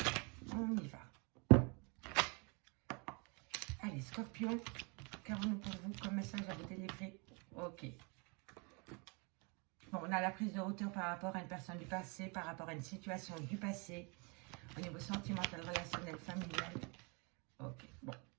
On y va. Allez, Scorpion, qu'avons-nous pour vous comme message à vous délivrer? Ok. Bon, on a la prise de hauteur par rapport à une personne du passé, par rapport à une situation du passé, au niveau sentimental, relationnel, familial. Ok, bon.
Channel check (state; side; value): quieter; left; 32.0 dB